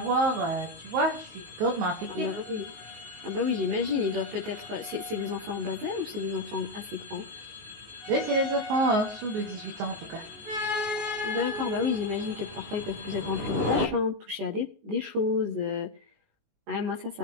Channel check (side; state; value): left; late; 19 ms